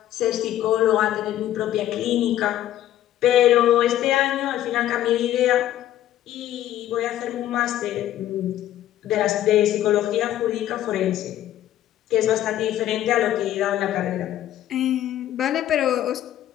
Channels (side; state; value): right; quieter; 12.5 dB